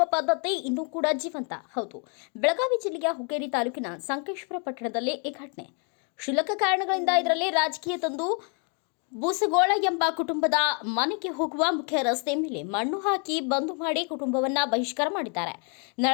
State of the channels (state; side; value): quieter; right; 39.0 dB